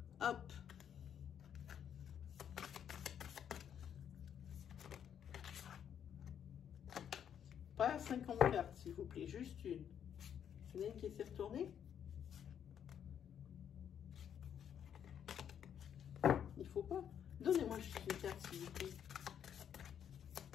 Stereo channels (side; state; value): right; quieter; 8.8 dB